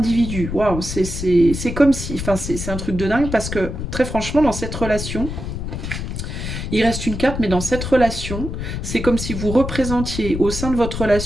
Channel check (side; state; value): left; noise; rumble, 5 dB below the sound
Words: Waouh, c'est comme si, enfin, c'est un truc de dingue, parce que très franchement, dans cette relation, il reste une carte, mais dans cette relation, c'est comme si vous représentiez au sein de votre